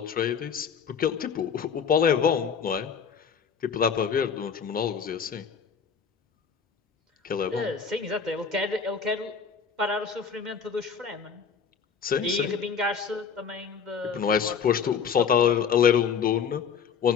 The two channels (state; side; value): quieter; right; 6.6 dB